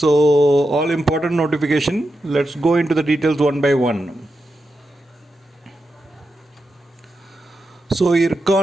all important notification. Let's go into the details one by one. So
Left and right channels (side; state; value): both; normal; correlation 0.88